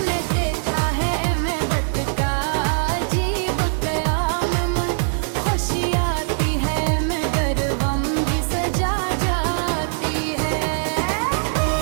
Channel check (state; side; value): silent; left; digital silence